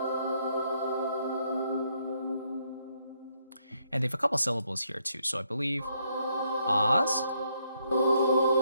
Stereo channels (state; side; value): inverted; both; correlation -0.73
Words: And they have a couple syllables here too. So I believe ahs,